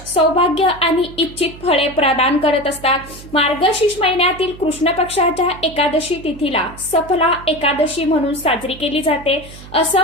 सौभाग्य आणि इच्छित फळे प्रदान करत असतात. मार्गशीर्ष महिन्यातील कृष्ण पक्षाच्या एकादशी तिथीला सफला एकादशी म्हणून साजरी केली जाते.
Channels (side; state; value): right; noise; hum, 17 dB below the sound